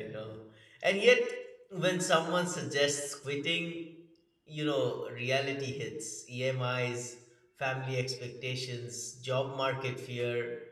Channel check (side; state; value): both; identical; correlation 1.00